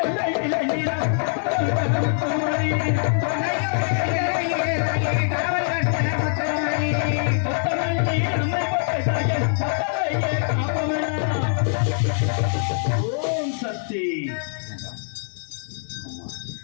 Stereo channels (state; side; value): silent; right; digital silence